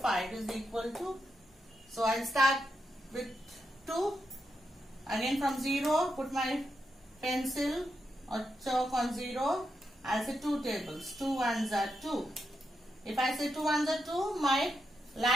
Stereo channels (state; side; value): normal; both; correlation 0.85